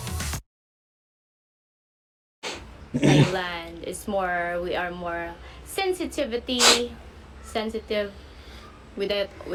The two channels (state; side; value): identical; both; correlation 1.00